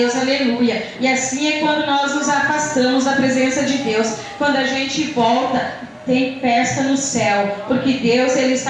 aleluia. E assim é quando nós nos afastamos da presença de Deus, quando a gente volta. Tem festa no céu, porque Deus, Ele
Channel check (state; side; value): identical; both; correlation 1.00